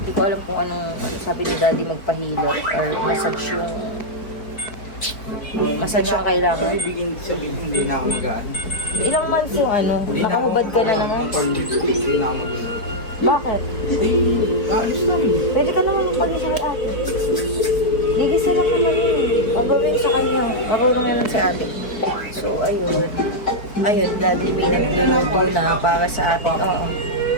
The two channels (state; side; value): late; right; 4.6 ms